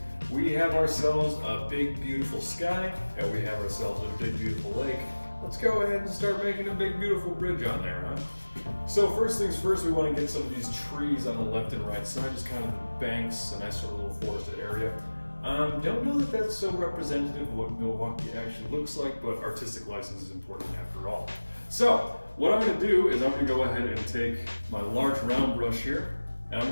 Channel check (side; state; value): both; inverted; correlation -1.00